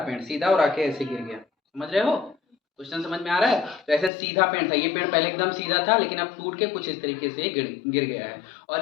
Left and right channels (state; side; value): drops out; right; at 4.1 s